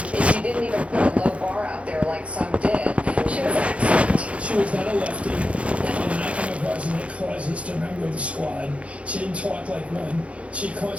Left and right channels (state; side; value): late; left; 0.062 ms